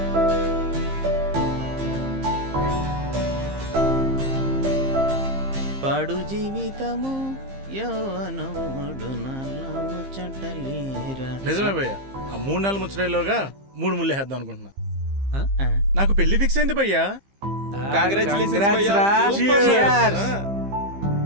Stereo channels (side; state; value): left; late; 15 ms